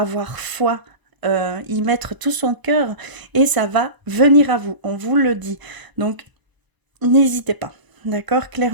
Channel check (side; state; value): left; late; 1.0 ms